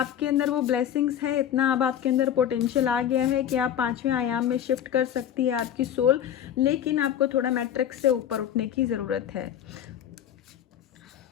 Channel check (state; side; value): quieter; right; 10.0 dB